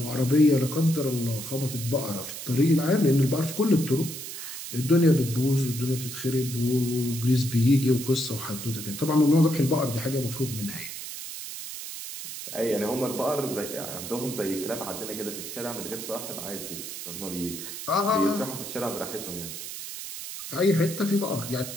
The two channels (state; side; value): noise; right; hiss, 9 dB below the sound